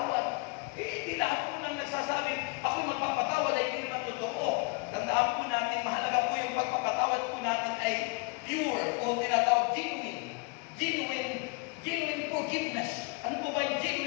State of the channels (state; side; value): quieter; right; 29.6 dB